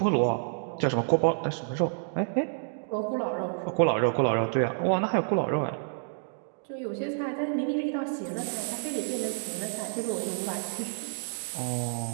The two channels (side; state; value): left; silent; digital silence